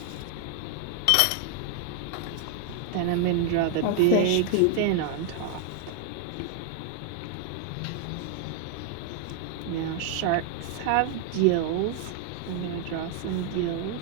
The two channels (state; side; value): different; both; correlation 0.00